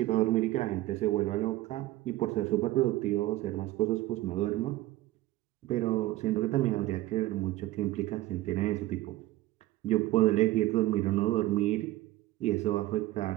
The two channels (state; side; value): quieter; left; 16.5 dB